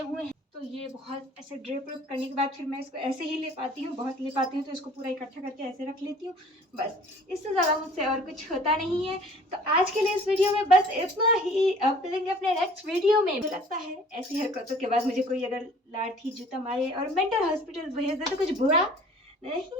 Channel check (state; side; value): normal; both; correlation 0.51